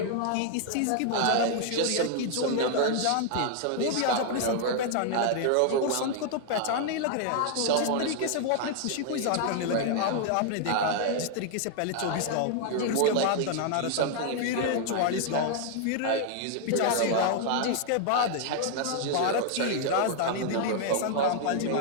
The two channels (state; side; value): different; both; correlation 0.00